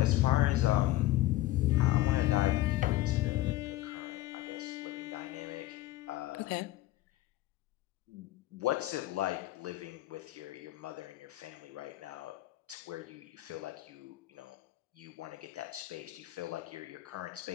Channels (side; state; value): right; quieter; 16.3 dB